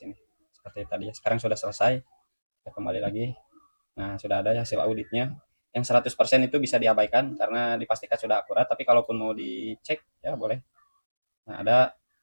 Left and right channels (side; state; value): both; inverted; correlation -1.00